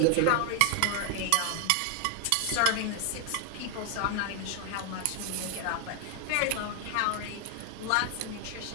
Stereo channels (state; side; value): different; both; correlation 0.00